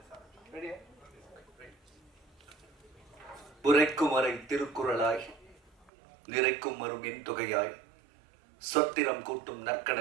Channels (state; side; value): drops out; left; at 5.9 s